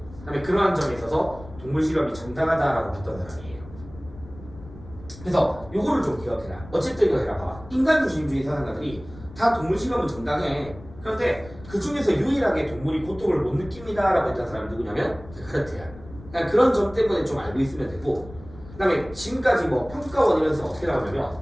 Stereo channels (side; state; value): left; noise; rumble, 18 dB below the sound